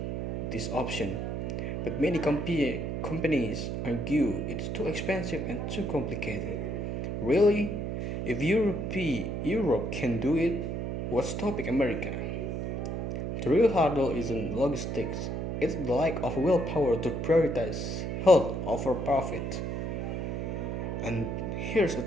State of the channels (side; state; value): right; noise; hum, 3 dB below the sound